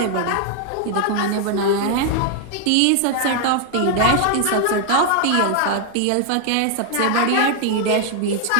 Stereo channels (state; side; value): different; both; correlation 0.00